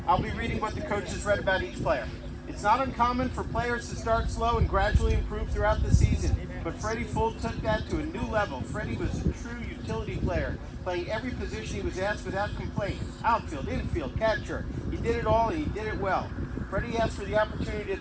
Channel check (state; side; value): identical; both; correlation 1.00